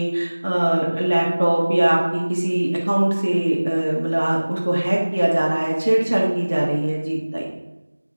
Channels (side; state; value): both; inverted; correlation -1.00